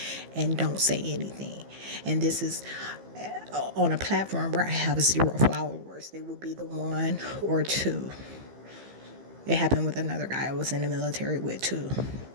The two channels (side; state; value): left; late; 15 ms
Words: and don't say anything. And this is on a platform where I have 0 followers. They would be the 1 or 2. It happened with another guy I was in the military with too.